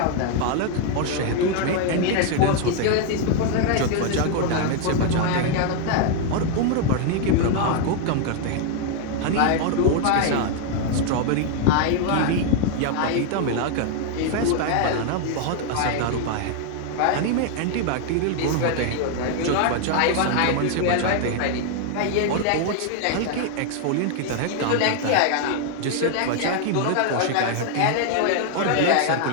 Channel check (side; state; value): both; different; correlation 0.01